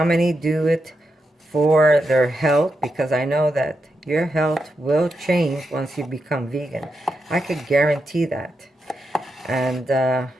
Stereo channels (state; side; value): normal; both; correlation 0.86